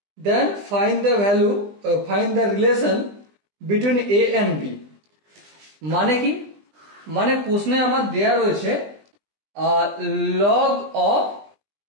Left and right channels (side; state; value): left; late; 20 ms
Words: then find the relation between a and b. মানে কি? মানে প্রশ্নে আমার দেয়া রয়েছে log of